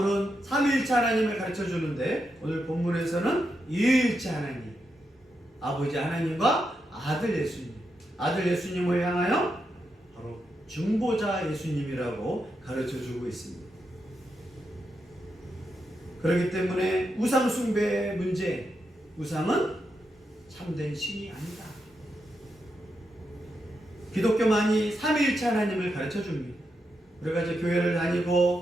삼위일체 하나님을 가르쳐 주는데 오늘 본문에서는 이위일체 하나님, 아버지 하나님과 아들 예수님, 아들 예수님을 향하여 바로 중보자 예수님이라고 가르쳐 주고 있습니다. 그렇기 때문에 우상 숭배의 문제, 우상은 참된 신이 아니다. 기독교만이 삼위일체 하나님을 가르쳐 줍니다. 우리가 이제 교회를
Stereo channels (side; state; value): both; normal; correlation 0.84